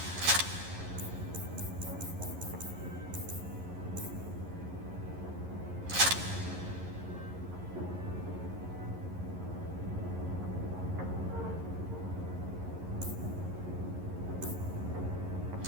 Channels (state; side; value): late; left; 11 ms